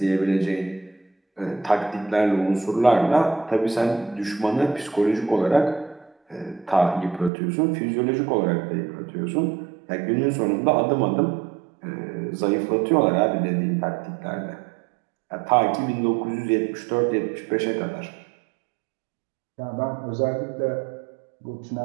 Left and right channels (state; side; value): drops out; left; at 7.3 s